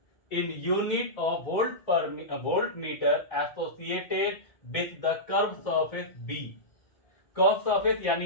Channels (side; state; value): right; late; 1.6 ms